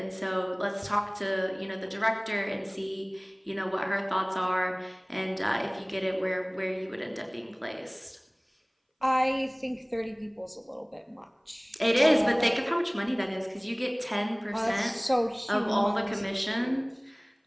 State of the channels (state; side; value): identical; both; correlation 1.00